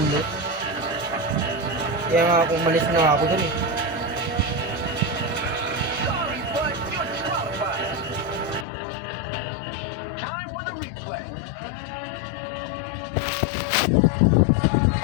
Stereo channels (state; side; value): drops out; right; at 8.7 s